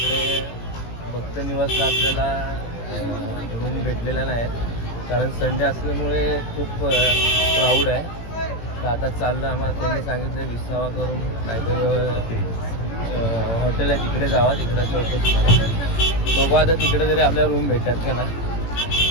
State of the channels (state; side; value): late; right; 18 ms